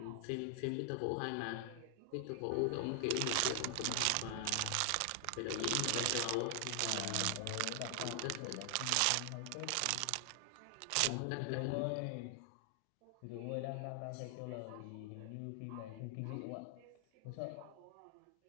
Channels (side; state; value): both; different; correlation 0.00